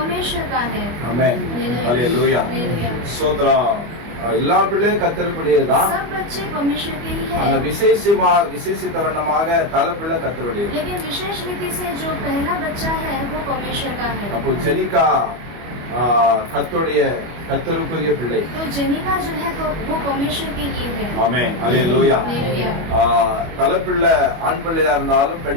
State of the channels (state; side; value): late; left; 25 ms